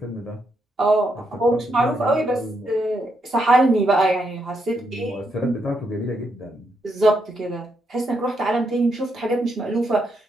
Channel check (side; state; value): both; normal; correlation 0.79